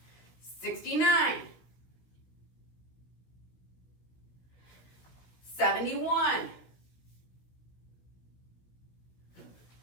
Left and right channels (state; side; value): late; right; 16 ms